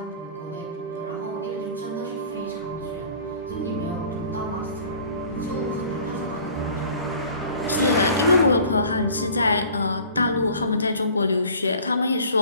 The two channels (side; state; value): both; inverted; correlation -0.47